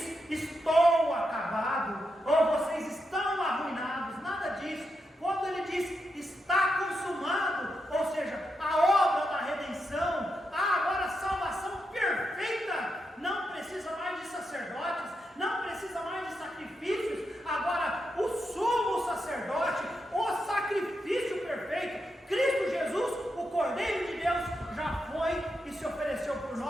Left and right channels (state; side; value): normal; both; correlation 0.85